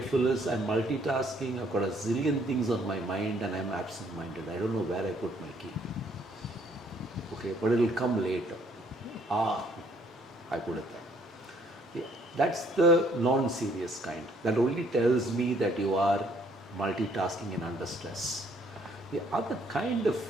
is I'm multitasking, I've got a zillion things on my mind and I'm absent-minded. I don't know where I put my key. Okay, but it'll come later. I put it there. Yeah, that's the non-serious kind. That only tells me that you are multitasking and under stress. The other kind of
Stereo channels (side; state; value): both; normal; correlation 0.64